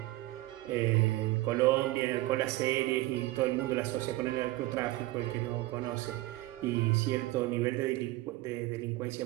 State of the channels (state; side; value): quieter; left; 18.3 dB